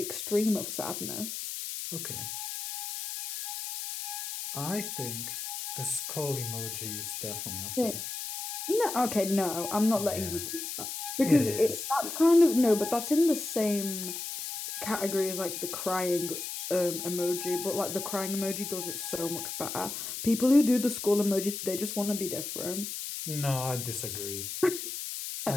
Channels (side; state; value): left; noise; hiss, 5 dB below the sound